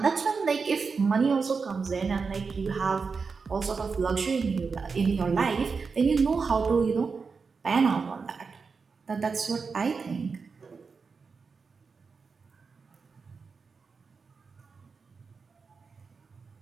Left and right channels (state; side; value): quieter; left; 5.0 dB